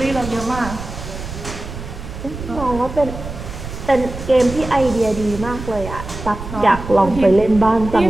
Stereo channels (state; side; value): noise; right; rumble, 10 dB below the sound